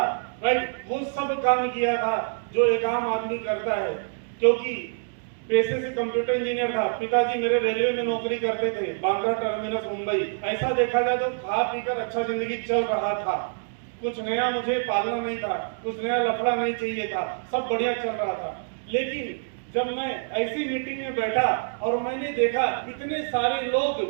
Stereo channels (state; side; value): silent; left; digital silence